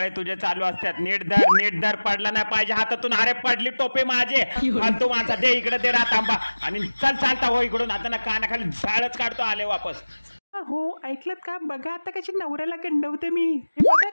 तुझे चालू असतात. नीट धर पडला नाही पाहिजे हातातून. अरे पडली टोपे माझे. फालतू माणसा, दे इकडे, दे रात आंबा आणि चल चालता हो इकडून. आता ना कानाखाली झाडच काढतो आले वापस. हो ऐकलत का? बघा आता कशी नवऱ्याला गंडवते मी. हे बघा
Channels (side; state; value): both; inverted; correlation -1.00